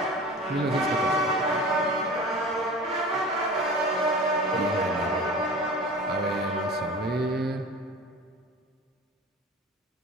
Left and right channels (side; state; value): both; normal; correlation 0.37